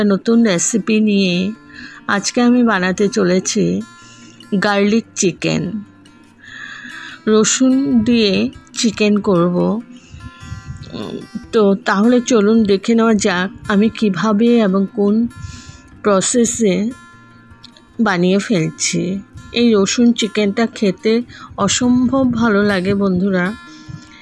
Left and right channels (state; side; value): identical; both; correlation 1.00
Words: নতুন রেসিপি নিয়ে। আজকে আমি বানাতে চলেছি গার্লিক চিকেন। রসুন দিয়ে চিকেন করব। তো তাহলে চলুন দেখে নেওয়া যাক আমি কিভাবে এবং কোন প্রসেসে বানিয়ে ফেলছি। এই রসুন চিকেনটা খেতে অসম্ভব ভালো লাগে বন্ধুরা।